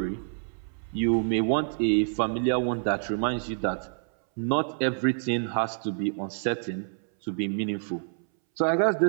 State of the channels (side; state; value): left; silent; 60 dB below the other